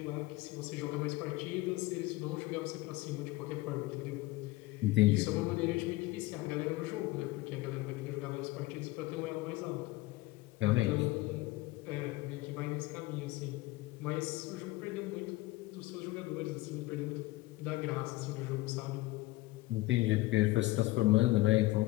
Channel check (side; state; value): right; quieter; 19.5 dB